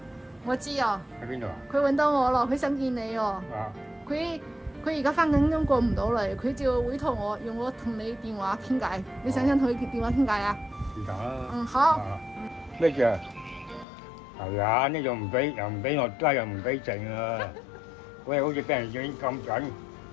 我知啊。喺邊度啊？佢揾到我咯，佢想見你哦。啊。佢而家翻緊工過唔到嚟，佢就委託我用我同你電話傾偈。你想唔想同佢電話傾偈啊？是但啦。嗯，好。咩事啊？係啊，呢度唔俾，又唔俾落街，又唔俾剩啊！喂，好似俾人影咁緊，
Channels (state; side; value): drops out; right; at 13.9 s